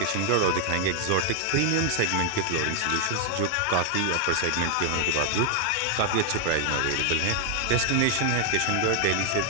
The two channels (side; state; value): both; different; correlation 0.00